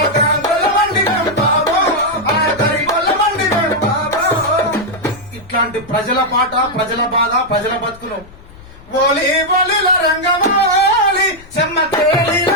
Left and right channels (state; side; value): noise; left; rumble, 22 dB below the sound